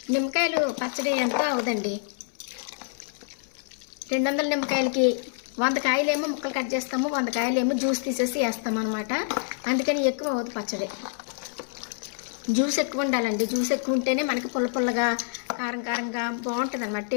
నిమ్మకాయలు పచ్చడి ఎంతో అవుదండి. 200 నిమ్మకాయలకి 100 కాయలేమో ముక్కలు కట్ చేస్తాము, 100 కాయలేమో జ్యూస్ తీసేసి వేస్తాం అనమాట. అందుకని ఎక్కువ అవుతుంది పచ్చడి. జ్యూస్ ఎక్కువ ఉండాలండి. జ్యూస్ ఎక్కువ ఉంటేనే మనకి పుల్లగా కారంగా బాగుంటుంది అనమాట.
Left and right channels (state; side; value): silent; right; 60 dB below the other